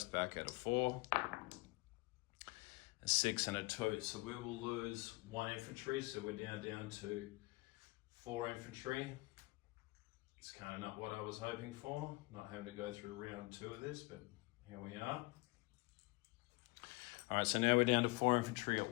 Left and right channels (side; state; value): right; quieter; 23.7 dB